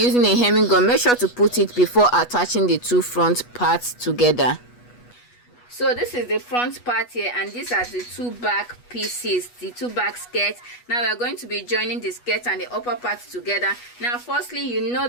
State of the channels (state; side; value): late; right; 8.2 ms